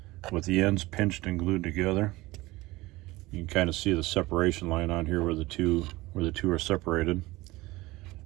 with the ends pinched and glued together. You can kind of see the separation line on here where the two are separated.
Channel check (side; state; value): left; quieter; 20.1 dB